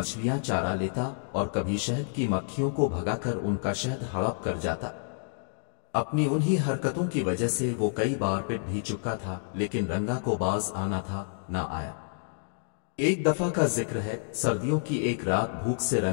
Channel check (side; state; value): right; silent; digital silence